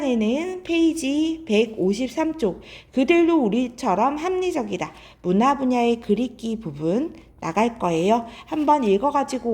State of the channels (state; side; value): identical; both; correlation 1.00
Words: 페이지 153쪽 그들도 우리처럼 합리적이다. 문화 분야의 글읽기 부분 나갈 거예요. 한번 읽어가지고